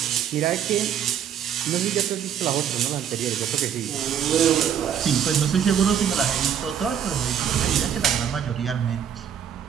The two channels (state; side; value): quieter; left; 8.8 dB